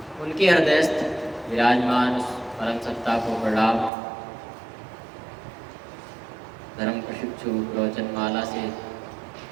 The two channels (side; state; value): left; drops out; at 3.9 s